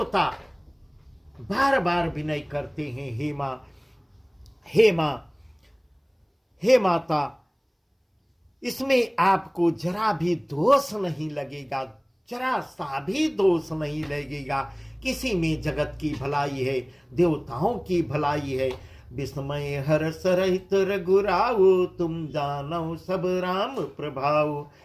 बार बार विनय करते हैं, हे माता, इसमें आपको जरा भी दोष नहीं लगेगा, जरा सा भी दोष नहीं लगेगा। किसी में जगत की भलाई है, देवताओं की भलाई है। विस्मय हर्ष रहित रघुराऊ, तुम जानो सब राम प्रभाऊ।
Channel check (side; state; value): both; identical; correlation 1.00